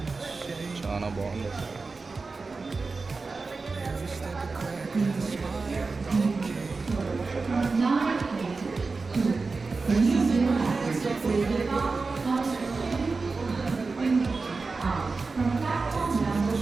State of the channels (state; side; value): quieter; left; 4.1 dB